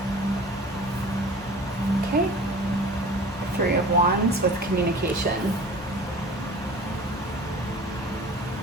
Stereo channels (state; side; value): normal; both; correlation 0.42